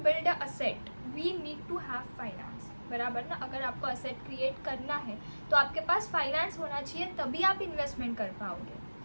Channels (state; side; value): inverted; both; correlation -1.00